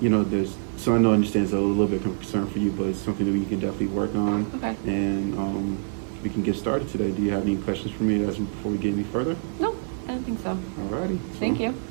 You know, so I know I understand it's a little bit of concern for you, but it's something that we can definitely work on. Okay. And we can get started today. Do you have any questions for me before we get any further? No, I don't think so. Alrighty. Thank you.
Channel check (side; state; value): left; silent; digital silence